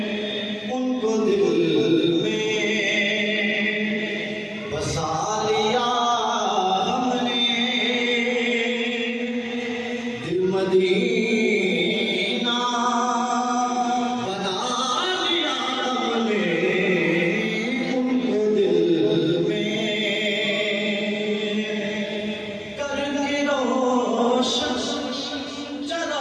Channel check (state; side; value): identical; both; correlation 1.00